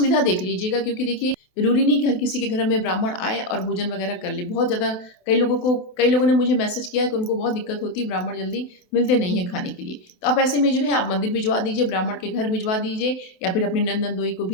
देख लीजिएगा, क्योंकि देखिए जरूरी नहीं कि हर किसी के घर में ब्राह्मण आए और भोजन वगैरह कर ले। बहुत ज़्यादा कई लोगों ने मुझे मैसेज किया है कि उनको बहुत दिक्कत होती है, ब्राह्मण जल्दी मिलते नहीं है खाने के लिए। तो आप ऐसे में जो है आप मंदिर भिजवा दीजिए, ब्राह्मण के घर भिजवा दीजिए, या फिर अपनी नंद नंदोई को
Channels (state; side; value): late; right; 28 ms